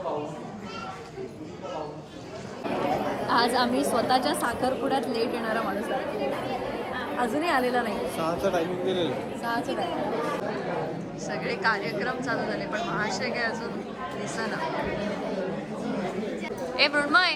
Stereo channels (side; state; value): both; identical; correlation 1.00